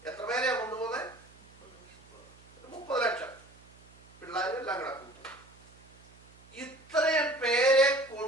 എത്ര പേരെയാ കൊണ്ടുപോകുന്നത്? 30 ലക്ഷം പിള്ളേരും എല്ലാം കിടക്കും. ഇത്രയും പേരെ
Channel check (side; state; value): right; noise; hum, 24 dB below the sound